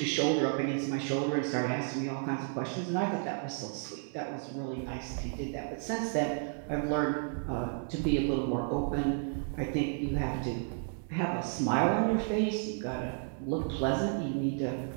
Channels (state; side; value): silent; left; 56 dB below the other